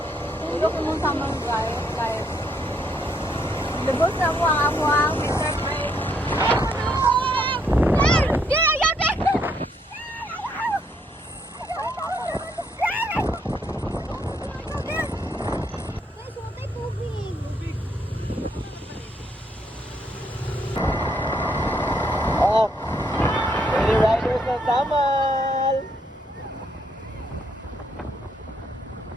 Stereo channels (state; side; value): normal; both; correlation 0.72